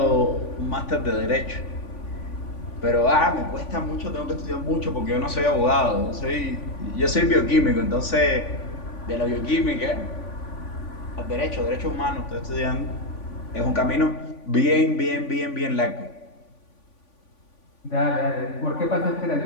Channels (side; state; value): right; late; 3.5 ms